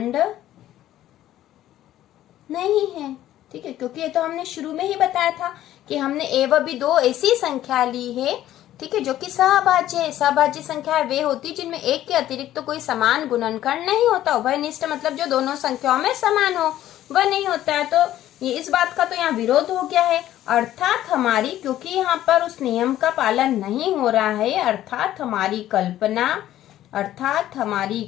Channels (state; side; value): quieter; right; 13.1 dB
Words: नहीं है। ठीक है, क्योंकि ये तो हमने शुरू में ही बताया था कि हमने ए व बी दो ऐसी संख्या ली है, ठीक है, जो कि सहभाज्य है। सहभाज्य संख्या वे होती जिनमें एक के अतिरिक्त तो कोई समान गुणनखंड नहीं होता। उभयनिष्ठ मतलब जो दोनों संख्याओं में समान हो, वह नहीं होता है। तो ये इस बात का तो यहाँ विरोध हो गया है। अर्थात हमारी, क्योंकि यहाँ पर उस नियम का पालन नहीं हो रहा है, अर्थात हमारी कल्पना